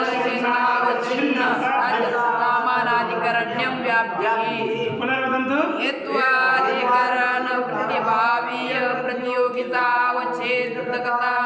साध्यसामानाधिकरण्यं व्याप्तिः पुनर्वदन्तु हेत्वाधिकरण प्रतिभावीय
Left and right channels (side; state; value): both; identical; correlation 1.00